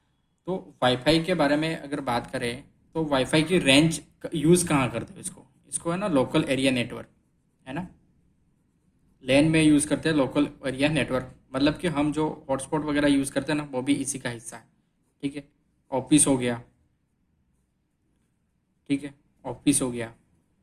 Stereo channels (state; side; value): identical; both; correlation 1.00